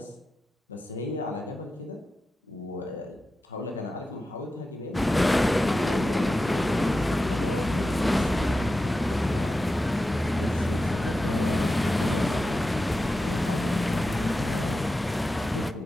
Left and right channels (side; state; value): both; normal; correlation 0.91